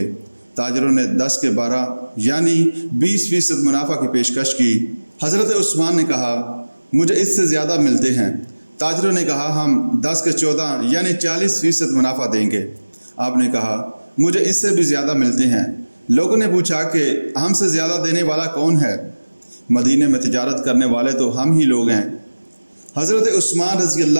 تاجروں نے 10 کے 12 یعنی 20% منافع کی پیشکش کی۔ حضرت عثمان نے کہا، مجھے اس سے زیادہ ملتے ہیں۔ تاجروں نے کہا، ہم 10 کے 14 یعنی 40% منافع دیں گے۔ آپ نے کہا، مجھے اس سے بھی زیادہ ملتے ہیں۔ لوگوں نے پوچھا کہ ہم سے زیادہ دینے والا کون ہے؟ مدینے میں تجارت کرنے والے تو ہم ہی لوگ ہیں۔ حضرت عثمان رضی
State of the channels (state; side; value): inverted; both; correlation -1.00